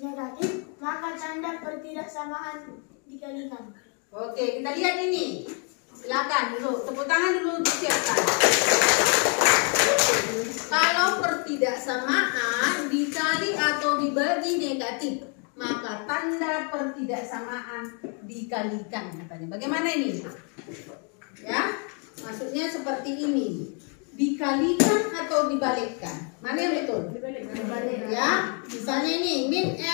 negatif, maka tanda pertidaksamaan dikalikan. Oke, kita lihat ini. Silakan dulu, tepuk tangan dulu disiapkan. Kalau pertidaksamaan dikali atau dibagi negatif, maka tanda pertidaksamaan dikalikan katanya. Bagaimana ini? Ya, maksudnya seperti ini. Dikalikan atau dibalikkan? Mana yang betul? Ya, misalnya ini min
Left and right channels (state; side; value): quieter; right; 38.9 dB